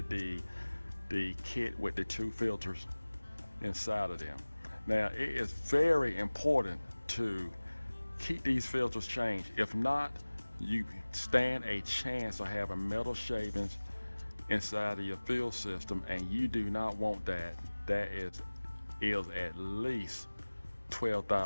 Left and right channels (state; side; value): inverted; both; correlation -1.00